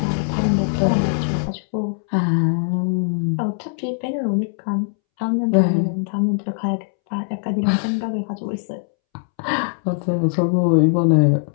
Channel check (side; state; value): right; silent; 65 dB below the other